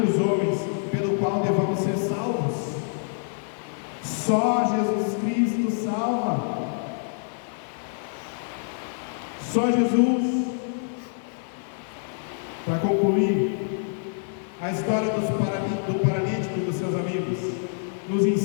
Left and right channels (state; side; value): silent; right; digital silence